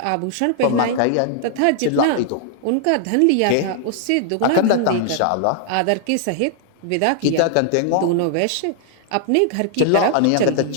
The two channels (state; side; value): different; both; correlation 0.00